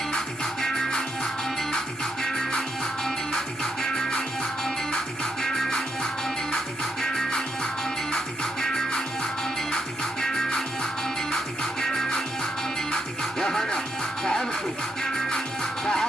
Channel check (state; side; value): normal; both; correlation 0.79